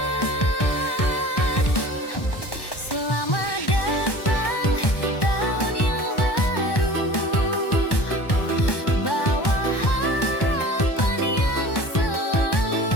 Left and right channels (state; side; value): late; right; 1.1 ms